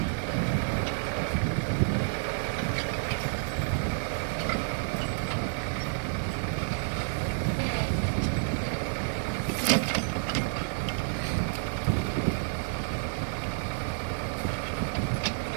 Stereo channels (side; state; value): left; silent; 58 dB below the other